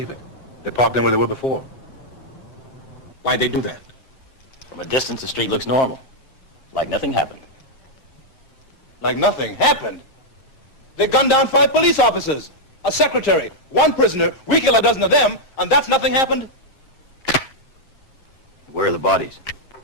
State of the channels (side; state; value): right; late; 7.7 ms